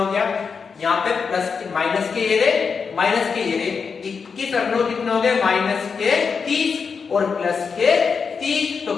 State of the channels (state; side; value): quieter; right; 5.6 dB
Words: गया यहाँ पे? प्लस माइनस के ये रे, माइनस के ये रे, 21 और 9 कितना हो गए? माइनस के 30 और प्लस के 30, तो